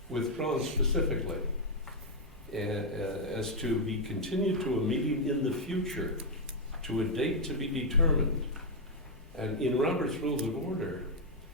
withdrawn specifically, as to be continued to a meeting in the future, to a date to be determined. And in Robert's Rules of Order,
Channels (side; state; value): both; normal; correlation 0.00